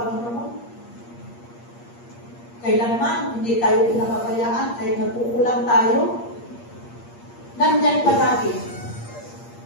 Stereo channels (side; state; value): right; late; 8.5 ms